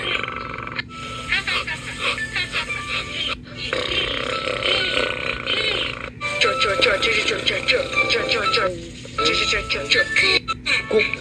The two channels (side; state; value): both; identical; correlation 1.00